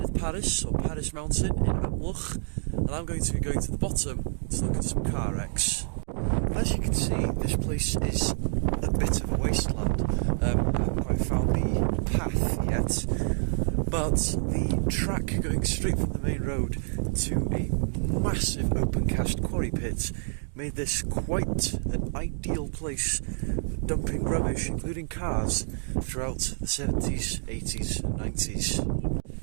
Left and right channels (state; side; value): silent; left; 59 dB below the other